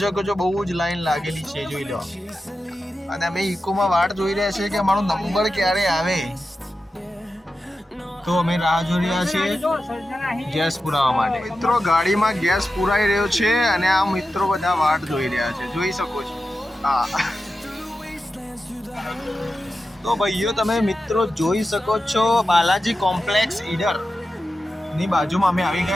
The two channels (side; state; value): both; normal; correlation 0.92